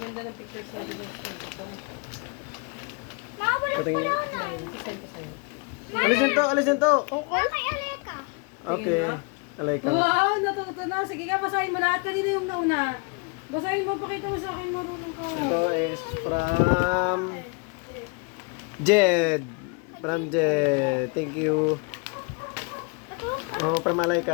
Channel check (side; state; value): right; quieter; 32.5 dB